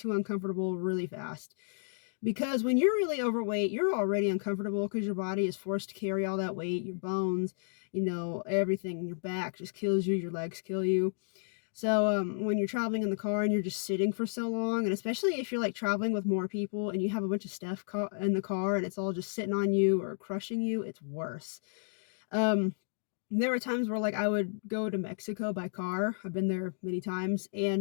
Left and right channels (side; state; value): right; silent; digital silence